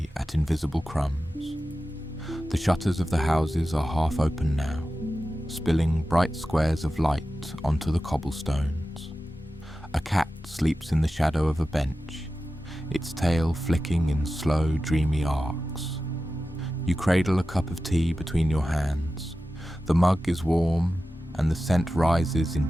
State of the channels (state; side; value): normal; both; correlation 0.93